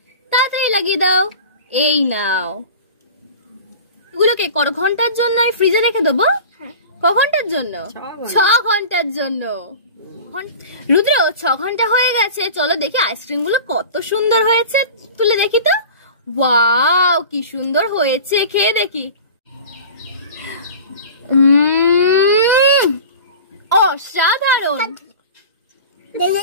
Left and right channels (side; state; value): both; inverted; correlation -0.37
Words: তাড়াতাড়ি লাগিয়ে দাও। এই নাও। এগুলোকে কত ঘন্টার জন্য আমি ফ্রিজে রেখে দেবো? ক ঘন্টার জন্য? 6 ঘন্টার জন্য। রুদ্র 6 ঘন্টা হয়ে গেছে। চলো দেখি আইসক্রিম গুলো কত সুন্দর হয়েছে। তুলে দেখি তো। ওয়াও, কি সুন্দর হয়েছে। খেয়ে দেখি। অসাধারণ।